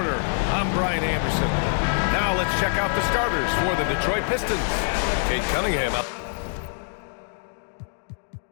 I'm Brian Anderson. Now let's check out the starters for the Detroit Pistons. Cade Cunningham up.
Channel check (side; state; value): right; silent; 60 dB below the other